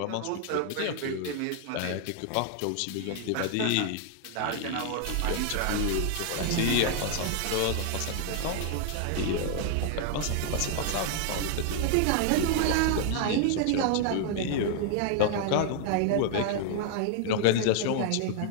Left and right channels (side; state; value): both; different; correlation 0.00